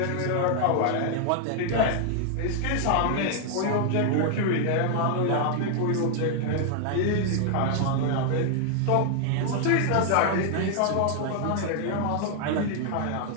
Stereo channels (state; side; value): different; both; correlation 0.00